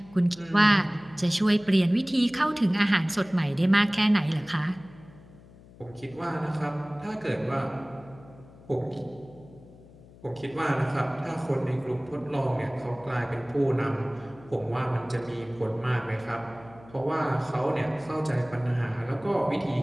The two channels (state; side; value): noise; left; hum, 22 dB below the sound